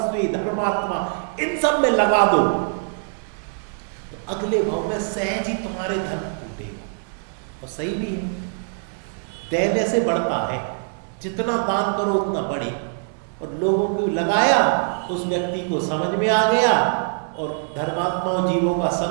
धर्मात्मा, इन सब में लगा दो तो अगले भाव में सहज ही तुम्हारे धन टूटेगा। और सही भी है, देने से बढ़ता है, जितना दान करो उतना बढ़े। और लोगों को लगाया, उस व्यक्ति को समझ में आ गया और धर्मात्माओं जीवों का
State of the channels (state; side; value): silent; left; digital silence